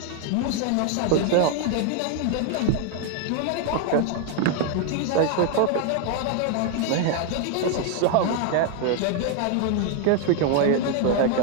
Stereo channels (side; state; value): both; different; correlation 0.00